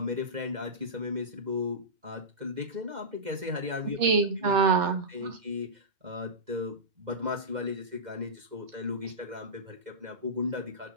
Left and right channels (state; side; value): late; left; 2.1 ms